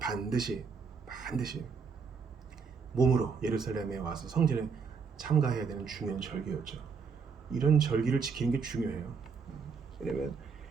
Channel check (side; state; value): left; quieter; 5.6 dB